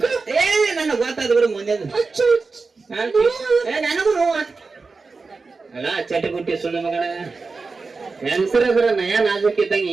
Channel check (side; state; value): left; quieter; 4.2 dB